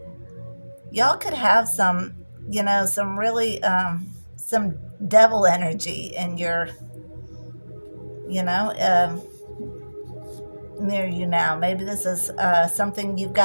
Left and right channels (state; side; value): inverted; both; correlation -1.00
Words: some, some really some devil energy in your, you know, near you now. Maybe this is something you've